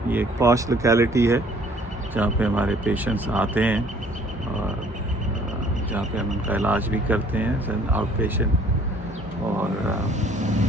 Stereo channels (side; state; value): both; normal; correlation 0.57